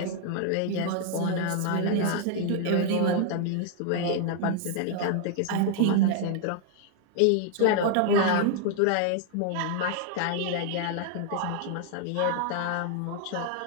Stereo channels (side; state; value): both; different; correlation 0.00